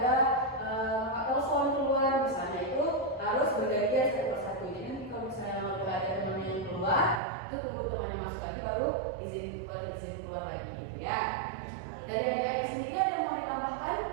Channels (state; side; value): drops out; left; at 7.2 s